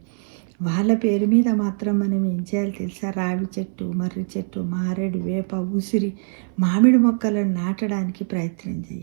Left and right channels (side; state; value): left; silent; 60 dB below the other